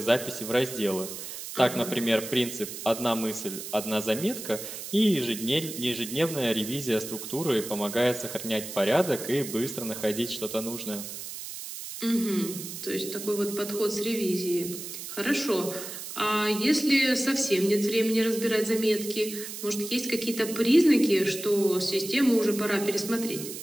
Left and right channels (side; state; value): right; noise; hiss, 9 dB below the sound